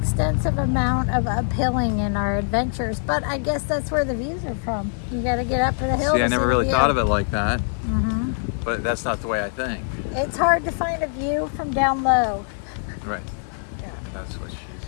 amount of uphilling in our adventures, but I guess that's where the views are from. You got to get up a hill. See, to I never the really view. thought of it like that, Mhm. but that's not the way I think. It's hard to find a view from down low. Right. Yeah. That's what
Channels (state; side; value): silent; right; digital silence